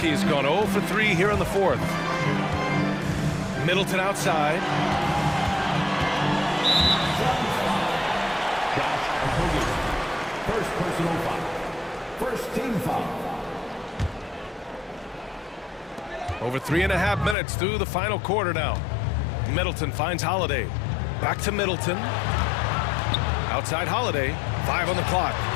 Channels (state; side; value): drops out; right; at 17.4 s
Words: gone 0 for 3 here in the fourth. Middleton outside. First personal foul. First team foul. Over 3.5 minutes through the final quarter now. Middleton finds Holiday. Back to Middleton. Outside Holiday. 5 on the clock.